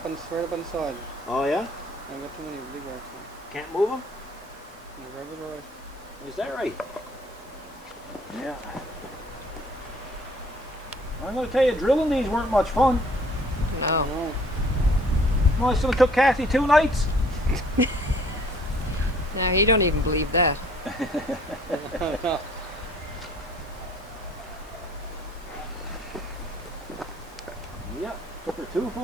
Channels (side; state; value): both; normal; correlation 0.56